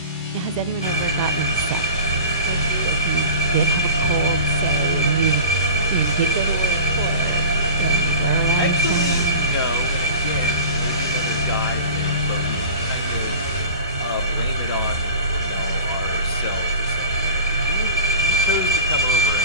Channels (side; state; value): both; inverted; correlation -0.37